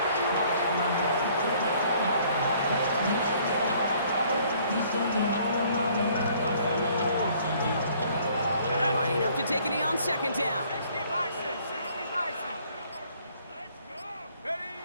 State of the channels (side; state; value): both; inverted; correlation -0.60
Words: Lining up to take a knee on 2nd down. 60 Bison, 60 Bison. Let's go. Ready.